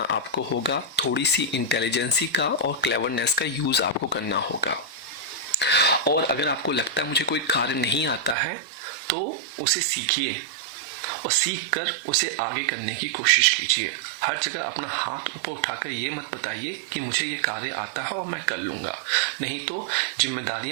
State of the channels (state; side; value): drops out; left; at 8.3 s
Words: आपको होगा। थोड़ी सी इंटेलिजेंसी का और क्लेवरनेस का यूज आपको करना होगा। और अगर आपको लगता है मुझे कोई कार्य नहीं आता है तो उसे सीखिए और सीख कर उसे आगे करने की कोशिश कीजिए। हर जगह अपना हाथ ऊपर उठाकर ये मत बताइए कि मुझे ये कार्य आता है और मैं कर लूंगा, नहीं तो